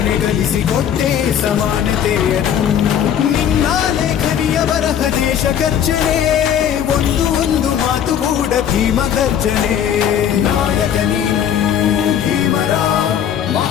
ಕಲಿಸಿಕೊಟ್ಟೆ ಸಮಾನತೆಯನ್ನು ನಿನ್ನ ಲೇಖನಿಯ ಬರಹ ದೇಶ ಗರ್ಜನೆ ಒಂದು ಮಾತು ಕೂಡ ಭೀಮ ಗರ್ಜನೆ ನಾಯಕ ನೀನು ಭೀಮರ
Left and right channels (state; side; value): quieter; right; 9.2 dB